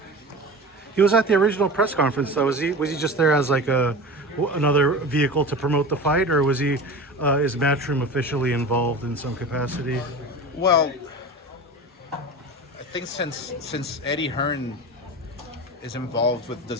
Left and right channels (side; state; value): both; normal; correlation 0.31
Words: He was at the original press conference, though. Was he just there as like another vehicle to promote the fight, or was he is Matchroom officially involved in some capacity? Well, I think since Eddie Hearn is involved with